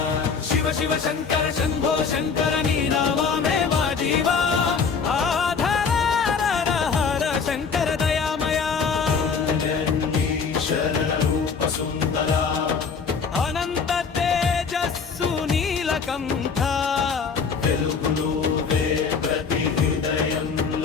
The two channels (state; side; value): quieter; right; 5.6 dB